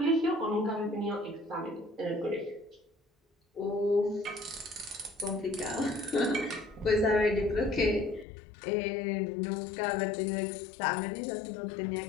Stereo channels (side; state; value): right; drops out; at 8.2 s